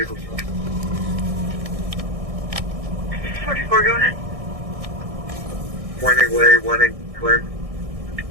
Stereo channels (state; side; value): late; left; 1.6 ms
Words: 44, go ahead. Winding way, winding Flynn.